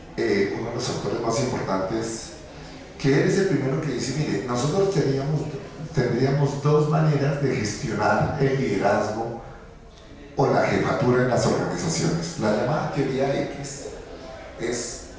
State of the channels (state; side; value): identical; both; correlation 1.00